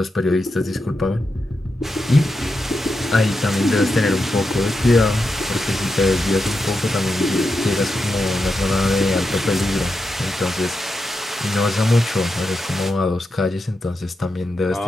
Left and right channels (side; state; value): both; normal; correlation 0.87